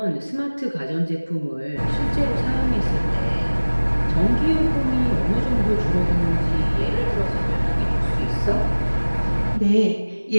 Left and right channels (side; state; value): both; inverted; correlation -1.00